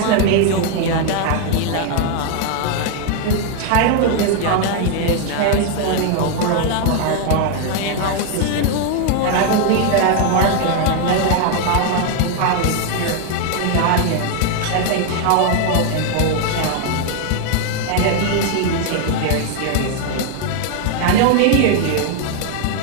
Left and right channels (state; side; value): different; both; correlation 0.01